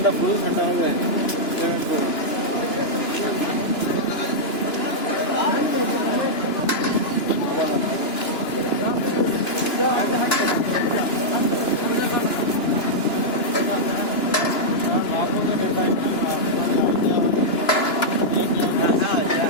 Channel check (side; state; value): right; late; 2.9 ms